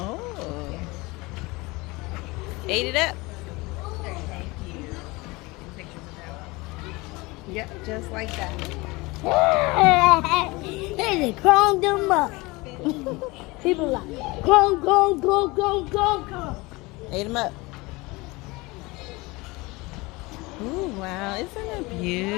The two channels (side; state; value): right; quieter; 23.4 dB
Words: Ate it up. Yep, just like that. They crawled them up. People like, go, go, go, go, go, go. Ate them up. Ooh, wow. Isn't it